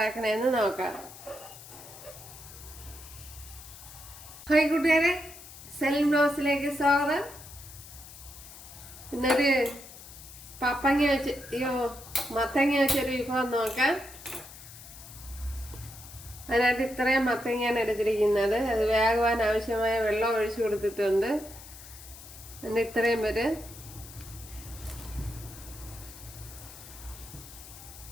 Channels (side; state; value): left; noise; hiss, 16 dB below the sound